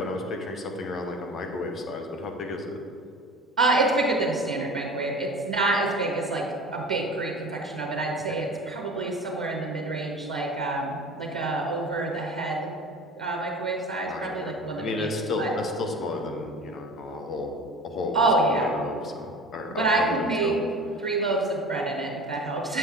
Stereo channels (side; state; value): both; normal; correlation 0.37